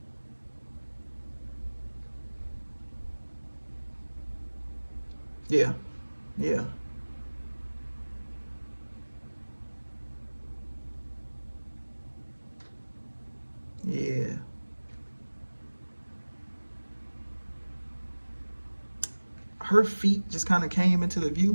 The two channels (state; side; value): inverted; both; correlation -1.00